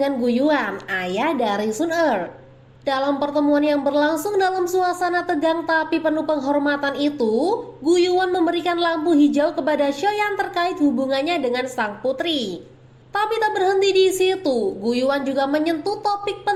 Guyuan, ayah dari Sun Er. Dalam pertemuan yang berlangsung dalam suasana tegang tapi penuh penghormatan itu, Guyuan memberikan lampu hijau kepada Xiaoyan terkait hubungannya dengan sang putri. Tapi tak berhenti di situ, Guyuan juga menyentuh topik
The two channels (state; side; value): identical; both; correlation 1.00